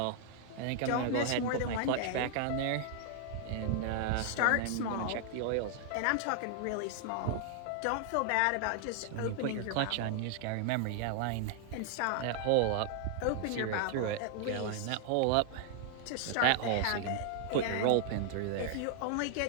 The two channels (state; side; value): different; both; correlation 0.00